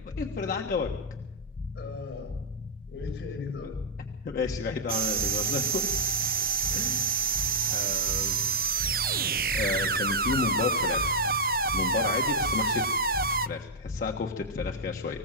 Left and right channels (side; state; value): both; normal; correlation -0.05